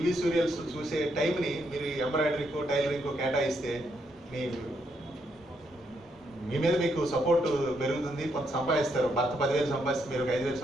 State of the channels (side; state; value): both; normal; correlation 0.77